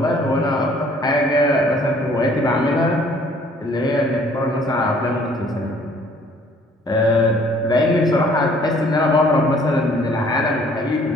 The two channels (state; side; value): normal; both; correlation 0.58